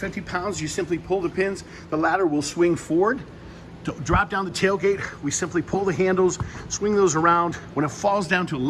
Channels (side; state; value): both; identical; correlation 1.00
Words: pounds. You simply pull the pins, the ladder will swing forward. To drop down the tailgate, we simply pull the handles, swing those around. When it falls down to a